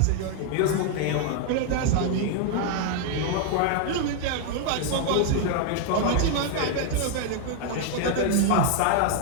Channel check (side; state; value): both; different; correlation 0.00